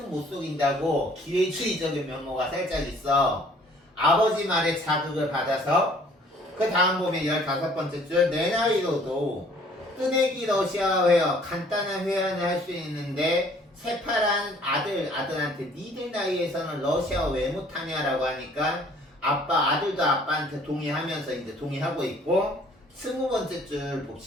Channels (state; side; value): normal; both; correlation 0.57